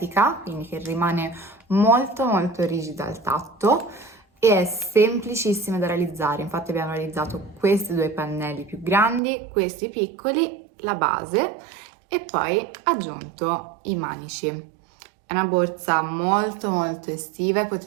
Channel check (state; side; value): drops out; left; at 9.2 s